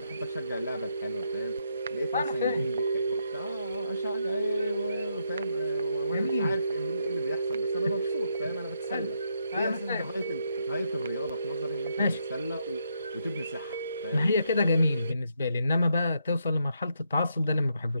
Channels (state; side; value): inverted; both; correlation -0.77